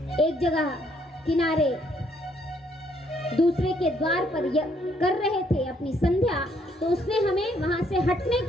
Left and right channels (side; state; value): both; normal; correlation 0.69